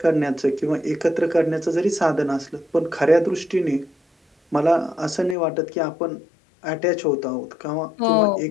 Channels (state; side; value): drops out; right; at 5.4 s